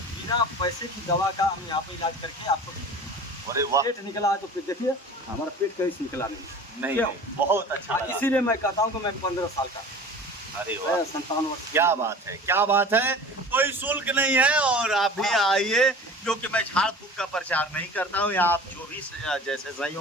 पैसे की दवा का हम यहाँ पर इलाज करके आपको। अरे वाह, पेट निकला है तो फिर देखिए हमारा पेट कहीं से निकला नहीं। बहुत अच्छा लगा। इसीलिए मैं कहता हूँ कि मैं 15 साल का, अरे वाह, 57 वर्ष। क्या बात है, क्या बात है। कोई शुल्क नहीं है और आप भी आइए, क्योंकि मैं झाड़ फूक का प्रचार नहीं करता हूँ। यहाँ आप जो भी जैसे सही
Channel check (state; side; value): normal; both; correlation 0.40